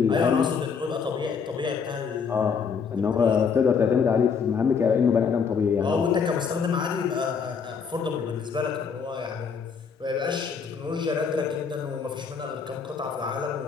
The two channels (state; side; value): quieter; right; 6.0 dB